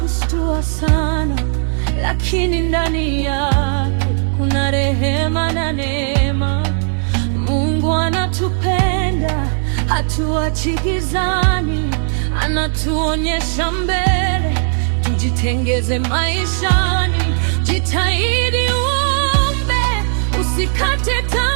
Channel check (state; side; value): silent; left; digital silence